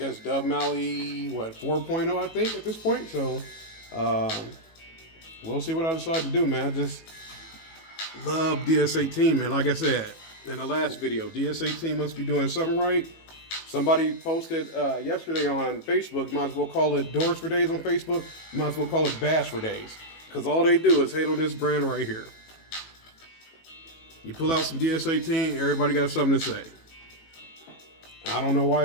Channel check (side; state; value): right; late; 18 ms